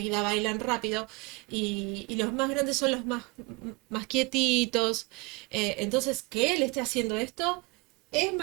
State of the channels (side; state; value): left; quieter; 27.5 dB